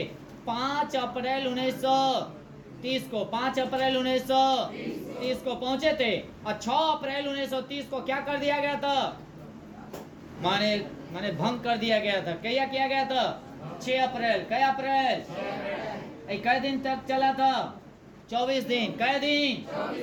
5 अप्रैल 1930 को। 5 अप्रैल 1930 को पहुंचे थे। और 6 अप्रैल 1930 को क्या कर दिया गया था? माने भंग कर दिया गया था। क्या किया गया था? 6 अप्रैल। क्या अप्रैल? कै दिन तक चला था? 24 दिन। कै दिन?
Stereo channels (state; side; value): identical; both; correlation 1.00